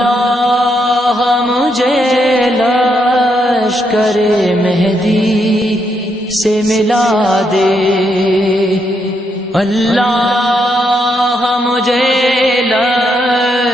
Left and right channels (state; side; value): normal; both; correlation 0.78